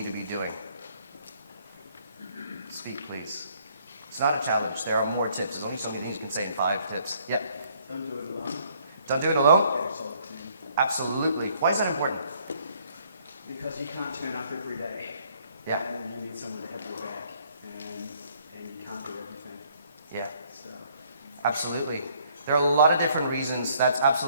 to be doing? Speak, please. It's not a challenge. There are more tips. There's only so many things you can say in 5 tips. Yeah? Don't do it alone. Don't do it alone? Get yourself a team. Absolutely. Why is that important? Because you can't turn up every day. Yeah. And you need someone to have your back. And you can't do everything. Yeah. So. Absolutely. There are a lot of different reasons. That's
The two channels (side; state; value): both; inverted; correlation -0.64